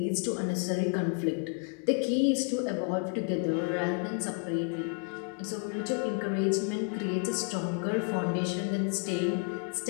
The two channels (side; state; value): right; quieter; 36.8 dB